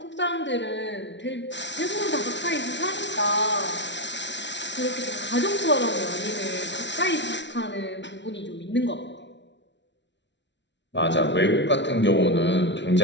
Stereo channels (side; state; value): right; late; 0.52 ms